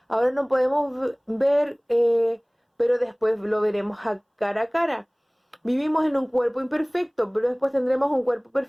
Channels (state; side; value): identical; both; correlation 1.00